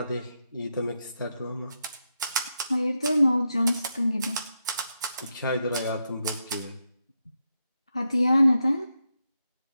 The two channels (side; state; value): both; inverted; correlation -0.85